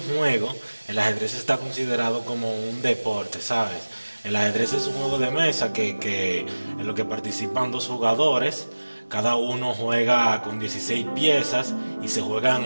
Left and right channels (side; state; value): both; inverted; correlation -1.00